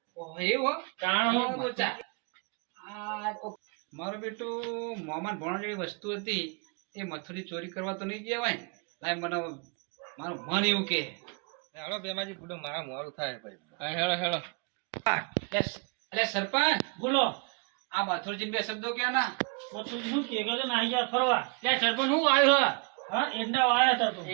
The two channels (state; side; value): quieter; left; 34.1 dB